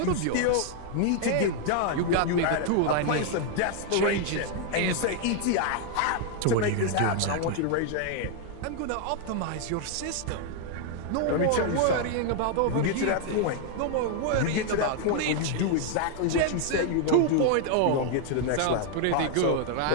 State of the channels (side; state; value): both; different; correlation 0.00